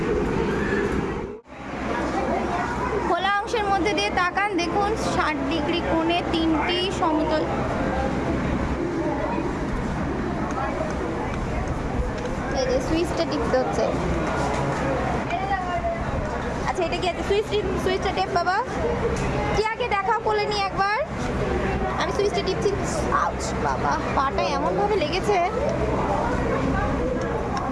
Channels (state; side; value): identical; both; correlation 1.00